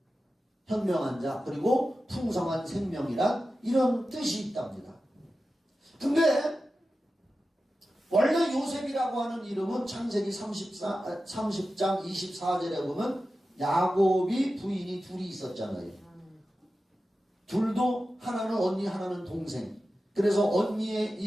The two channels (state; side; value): normal; both; correlation 0.93